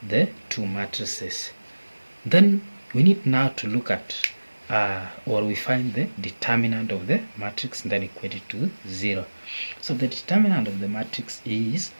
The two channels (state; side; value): inverted; both; correlation -1.00